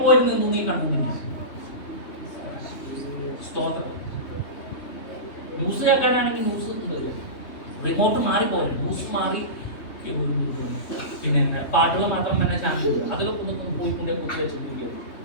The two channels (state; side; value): late; right; 3.2 ms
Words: പോയി നിന്നു നീ കണ്ടിട്ടില്ല. സ്തോത്രം. ന്യൂസ് കേൾക്കാനാണെങ്കിൽ ന്യൂസ് റിമോട്ട് മാറിപ്പോയി, ന്യൂസ് മാറി, പിന്നെ പാട്ടുകൾ മാത്രം തന്നെ ചാനൽ അതിലൊക്കെ ഒന്ന് പോയിക്കൊണ്ടേ കുത്തി വെച്ചിരിക്കുക.